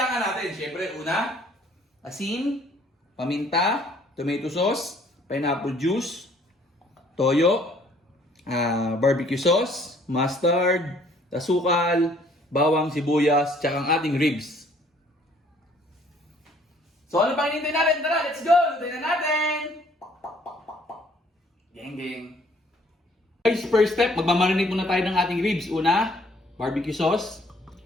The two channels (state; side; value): normal; both; correlation 0.60